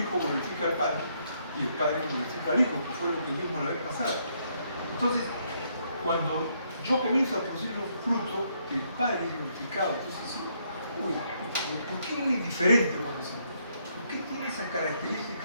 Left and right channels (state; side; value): inverted; both; correlation -0.72